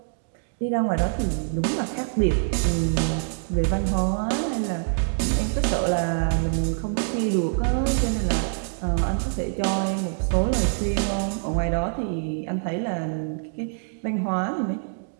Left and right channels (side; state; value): left; silent; digital silence